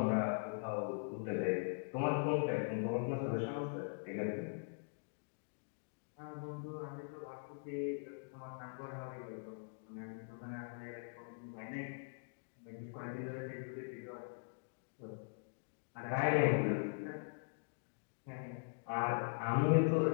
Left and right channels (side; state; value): right; silent; digital silence